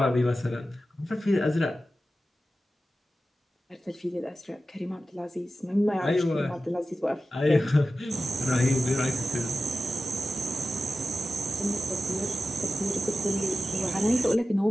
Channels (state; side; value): normal; both; correlation 0.94